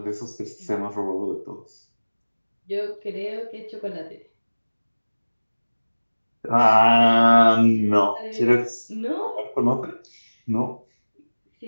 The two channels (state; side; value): inverted; both; correlation -1.00